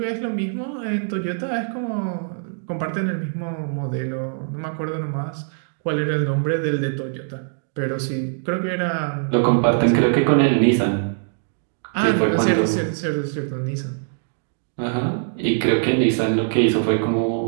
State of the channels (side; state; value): left; silent; digital silence